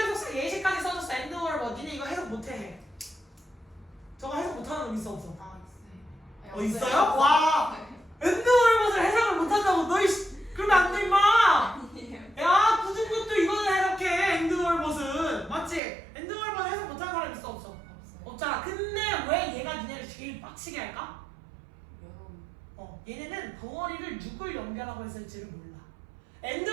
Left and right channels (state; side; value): drops out; left; at 15.8 s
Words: 예시까지 써줬어. 엔드 월 뭐. 니네 이거 해석 못해. 저거 해석 못하는 놈 있어 없어? 있어요? 와! 엔드 월봇을 해석을 못한다고 너 그러면 안 돼 임마! 야, 굳은 것도 이거는 해석해. 엔드 월봇은 맞지? 엔드 월봇 해석 못하는 사람 있어 없어? 없잖아. 근데 왜 얘가 니네를 제일 빡치게 할까? 얘네는 덩어리를 누굴 연결하고 했을지를 몰라. 엔드